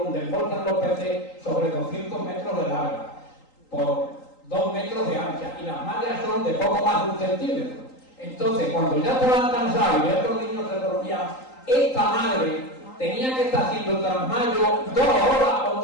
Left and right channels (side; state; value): right; late; 3.8 ms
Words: donde embolsan los peces, sobre 200 metros de larga, por 2 metros de ancha. Y las mallas son de poco más de 1 centímetro. Entonces, cuando ya estaban cansados y estos niños se dormían, esta madre tenía que estar haciendo trasmayo 2 horas o